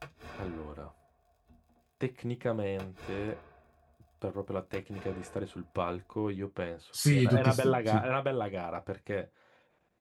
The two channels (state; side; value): identical; both; correlation 1.00